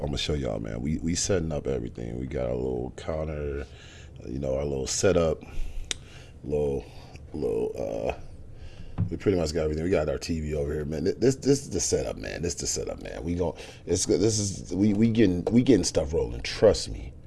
gonna show y'all, man. We setting up everything. We got our little counter, our little setup, little. We pretty much got everything. We got our TV over here, man. This is the setup, man. This is the setup, man. We getting stuff rolling. Trust me.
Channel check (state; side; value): identical; both; correlation 1.00